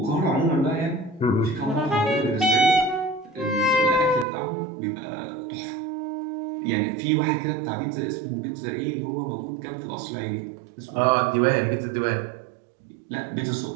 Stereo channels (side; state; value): left; drops out; at 4.2 s